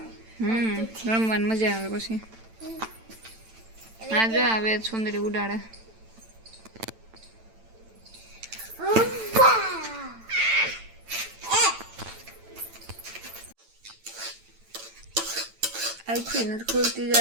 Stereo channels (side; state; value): left; late; 9.0 ms